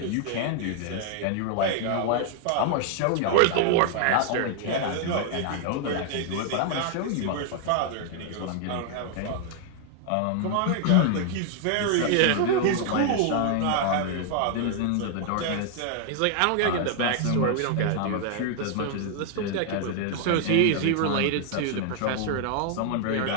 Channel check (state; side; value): different; both; correlation 0.00